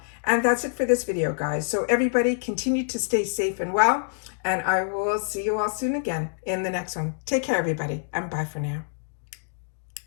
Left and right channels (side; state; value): right; silent; digital silence